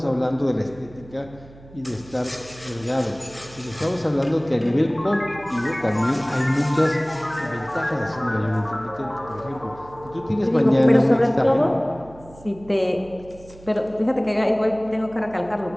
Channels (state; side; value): noise; right; hum, 21 dB below the sound